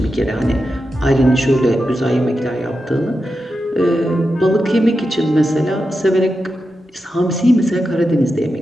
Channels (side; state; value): both; normal; correlation 0.89